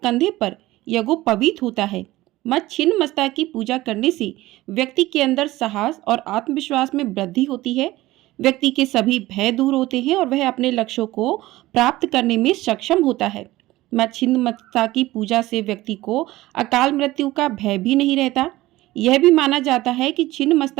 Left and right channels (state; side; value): quieter; left; 17.5 dB